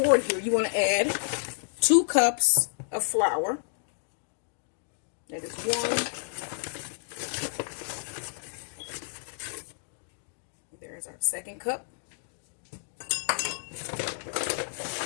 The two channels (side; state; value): right; silent; digital silence